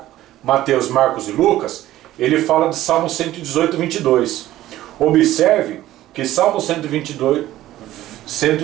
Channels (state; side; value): quieter; left; 14.6 dB